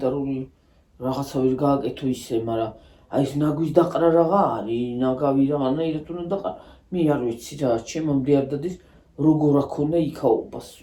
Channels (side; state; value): both; identical; correlation 1.00